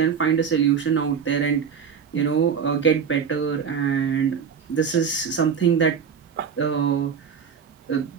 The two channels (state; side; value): quieter; left; 6.9 dB